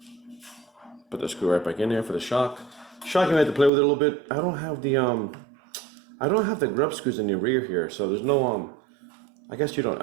Put the screw right back in there for the shock. Shock, you might have to play with it a little bit. I don't have the grub screws in the rear here, so there's no I guess you don't.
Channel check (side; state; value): left; drops out; at 3.7 s